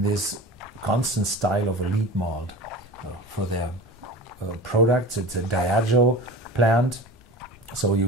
constant style of a lead malt for their products. It's a Diageo plant, so you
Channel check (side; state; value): both; normal; correlation 0.34